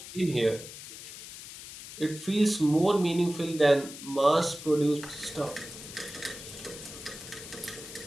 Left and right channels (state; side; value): noise; left; hiss, 13 dB below the sound